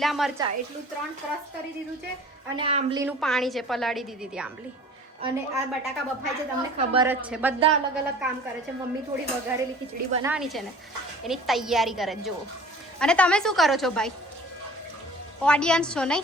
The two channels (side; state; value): both; normal; correlation 0.46